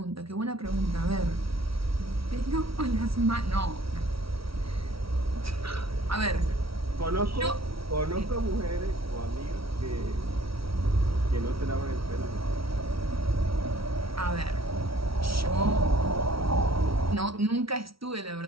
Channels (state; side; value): late; left; 0.75 ms